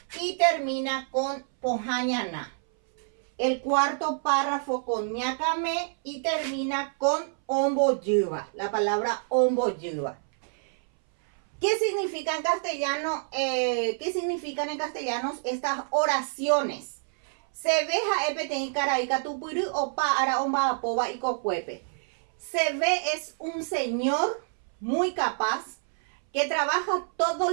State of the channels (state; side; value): silent; left; 60 dB below the other